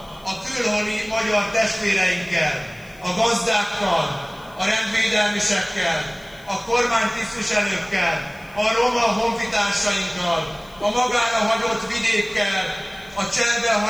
a külhoni magyar testvéreinkkel, a gazdákkal, a rendvédelmisekkel, a kormánytisztviselőkkel, a roma honfitársainkkal, a magára hagyott vidékkel, a cserbe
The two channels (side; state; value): left; noise; hiss, 27 dB below the sound